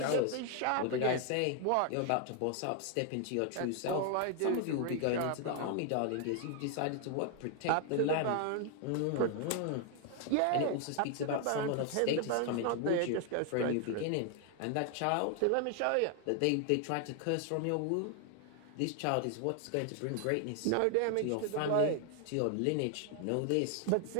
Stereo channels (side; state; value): both; different; correlation 0.00